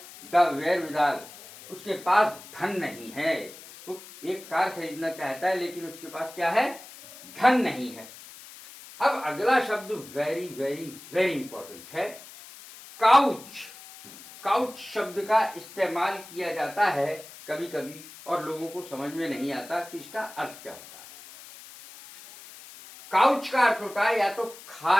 the wherewithal, उसके पास धन नहीं है। वो एक कार खरीदना चाहता है लेकिन उसके पास क्या है, धन नहीं है। अब अगला शब्द वेरी वेरी वेरी इंपॉर्टेंट है, काउच। काउच शब्द का इस्तेमाल किया जाता है कभी कभी और लोगों को समझ में नहीं आता कि इसका अर्थ क्या होता है। काउच का अर्थ होता है या तो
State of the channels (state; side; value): noise; left; hiss, 17 dB below the sound